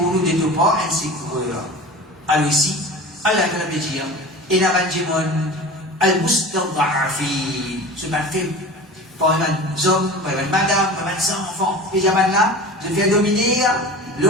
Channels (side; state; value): both; normal; correlation 0.35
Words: nous de tout part un secours. Alors ici, Allah peut dire, et la banjimon, al-mustad'afin, ce mal fait, par mes hommes, par mes madame, par mes enfants, et là, je viens dominer. Le